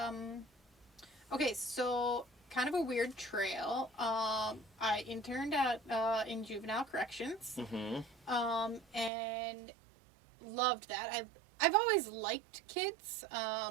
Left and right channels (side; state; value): left; drops out; at 9.1 s